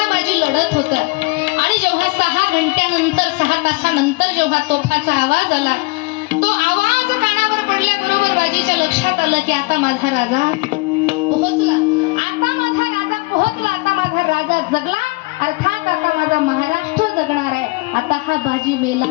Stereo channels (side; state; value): right; quieter; 25.2 dB